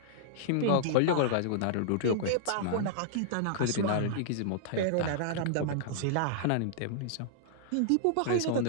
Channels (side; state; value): both; different; correlation -0.01